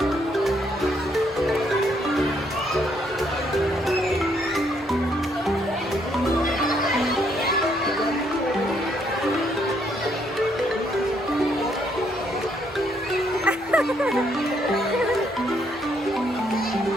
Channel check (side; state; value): both; normal; correlation 0.71